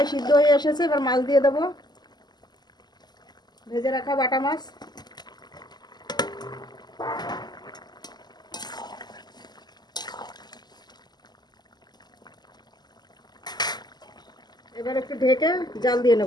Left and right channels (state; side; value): late; right; 0.20 ms